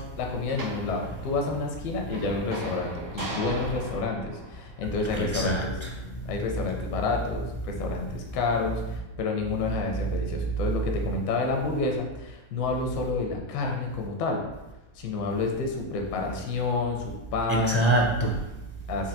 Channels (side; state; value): right; late; 1.3 ms